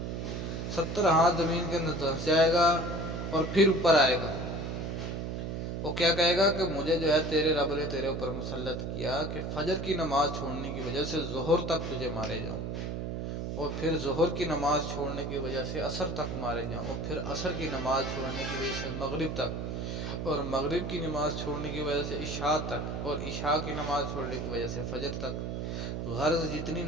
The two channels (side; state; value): right; noise; hum, 4 dB below the sound